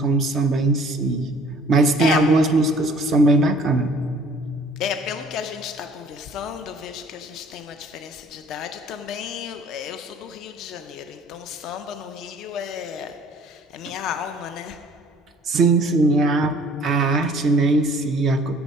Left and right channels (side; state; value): both; normal; correlation 0.54